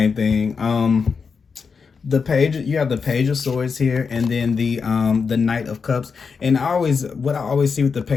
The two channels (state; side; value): quieter; right; 5.5 dB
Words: thing. The page, you have the Page of Swords here, and then the Knight of Cups. And what I always see with the